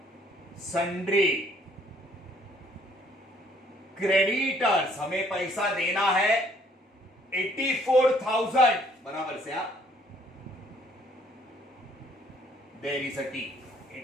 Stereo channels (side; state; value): both; normal; correlation 0.63